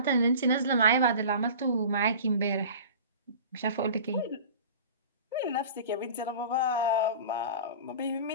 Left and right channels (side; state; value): both; inverted; correlation -0.39